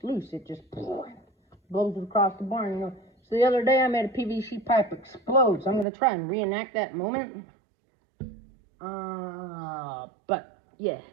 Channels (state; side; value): drops out; left; at 5.9 s